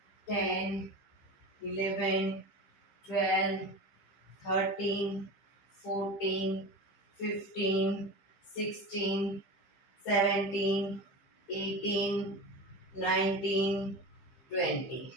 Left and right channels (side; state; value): right; late; 15 ms